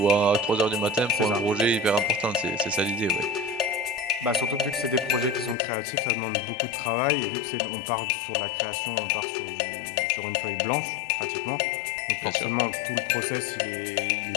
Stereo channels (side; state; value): right; drops out; at 5.6 s